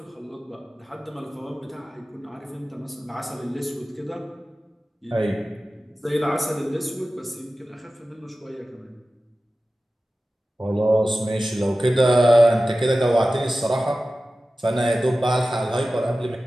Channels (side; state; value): both; normal; correlation 0.95